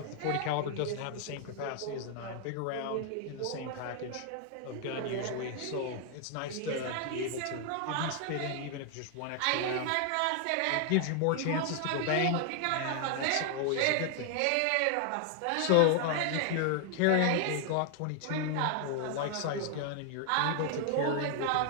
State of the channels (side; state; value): both; different; correlation 0.00